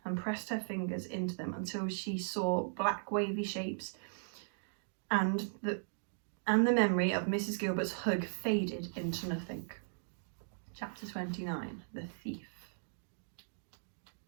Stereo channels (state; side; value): silent; left; digital silence